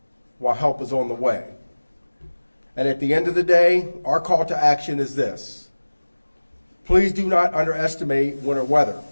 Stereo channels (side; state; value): both; inverted; correlation -1.00